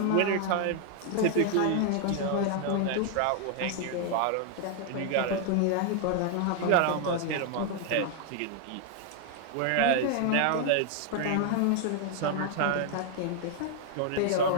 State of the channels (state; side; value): different; both; correlation 0.00